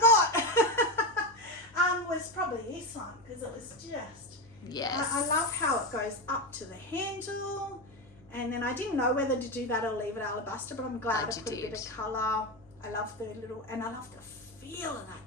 Was probably this one because it was just... Yes. I love how it goes up to the handle. And then I didn't know whether to do that or leave it alabaster, but I'm glad I put a bit of colour. I love the and I love the feel of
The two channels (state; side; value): noise; left; hum, 27 dB below the sound